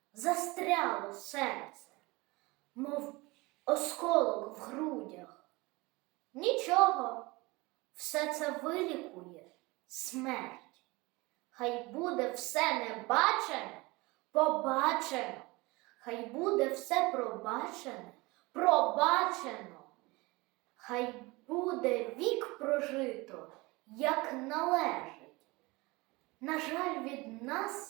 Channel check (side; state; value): left; quieter; 23.4 dB